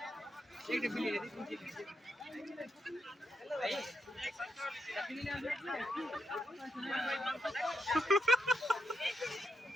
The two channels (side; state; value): both; normal; correlation 0.82